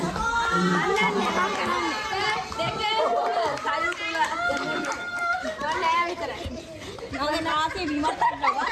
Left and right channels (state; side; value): identical; both; correlation 1.00